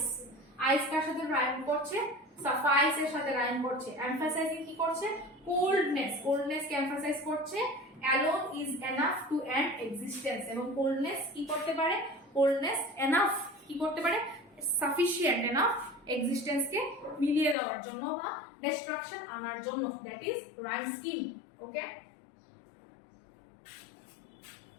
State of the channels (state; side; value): drops out; right; at 17.6 s